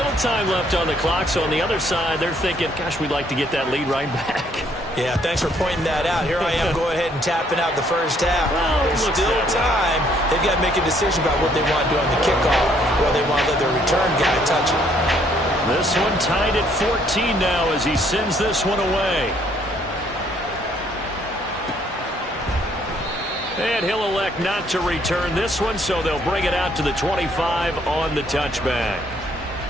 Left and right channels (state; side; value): normal; both; correlation 0.66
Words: time left on the clock, so on the other side, they're thinking, gosh, we'd like to get that lead right back. Yeah, thanks for pointing that out. Here I am, go ahead and tapping out the first half. Well, there's still time. They've got to make a decision about what they want to do on the kickoff, or they want to let their return guy touch it. This one tied at 14 now as he sends this one away. And he'll elect not to return this one, so they'll bring it out to the 25 on the touchback.